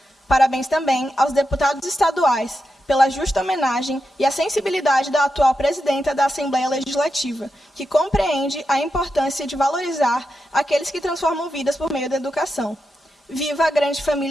Parabéns também aos deputados estaduais pela justa homenagem e a sensibilidade da atual presidenta da Assembleia Legislativa, que compreende a importância de valorizar aqueles que transformam vidas por meio da educação. Viva a grande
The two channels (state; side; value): normal; both; correlation 0.88